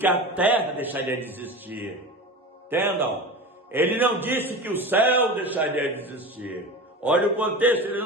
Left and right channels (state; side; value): normal; both; correlation 0.30